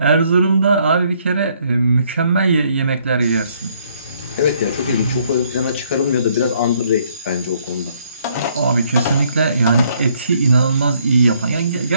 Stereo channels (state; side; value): inverted; both; correlation -0.67